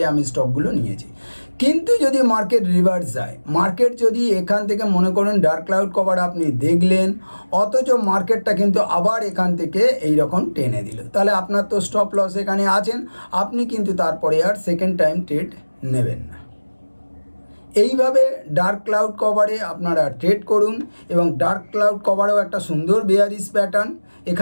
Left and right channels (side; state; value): both; inverted; correlation -1.00